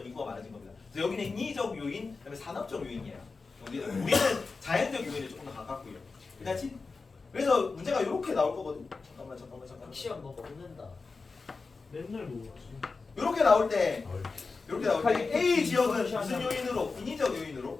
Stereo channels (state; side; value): quieter; right; 4.3 dB